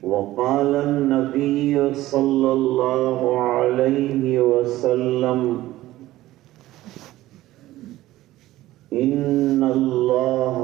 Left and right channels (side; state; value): left; quieter; 16.0 dB